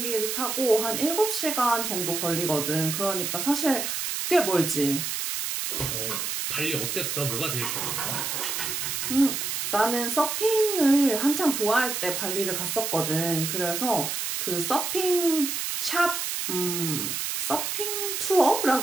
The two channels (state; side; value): noise; right; hiss, 2 dB below the sound